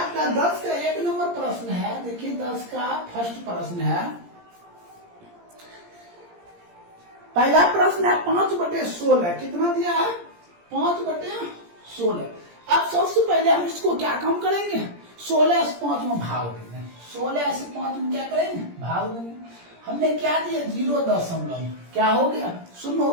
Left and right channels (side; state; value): left; late; 17 ms